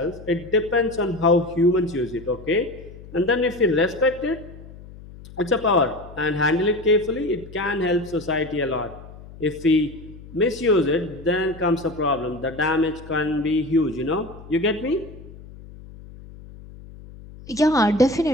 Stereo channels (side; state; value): left; noise; hum, 17 dB below the sound